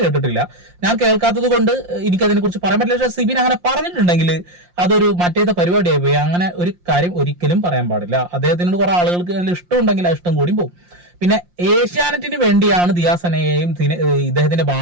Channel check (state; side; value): late; left; 5.7 ms